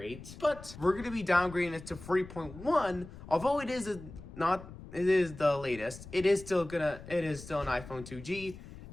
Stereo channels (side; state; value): left; noise; rumble, 15 dB below the sound